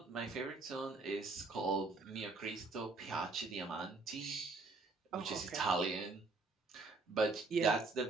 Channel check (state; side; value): quieter; left; 3.6 dB